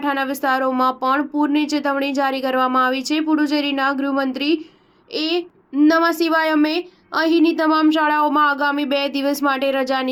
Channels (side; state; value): both; identical; correlation 1.00